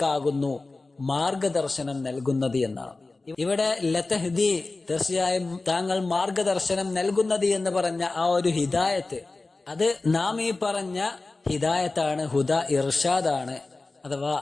മാർഗദർശനം നൽകുന്നത് എന്നാണ്. ഇവിടെ ലതഹ്ദി തീർച്ചയായും താങ്കൾ മാർഗദർശനം നൽകുന്നത് എന്ന് പറഞ്ഞ ആ ഒരു ഹിദായത്ത് അത് നാം ഈ പറഞ്ഞ ഹിദായത്താണ്, ഹുദാ ഇർഷാദാണ്. അഥവാ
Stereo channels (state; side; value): quieter; right; 3.4 dB